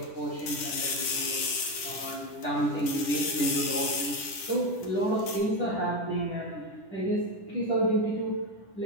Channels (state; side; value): late; right; 10 ms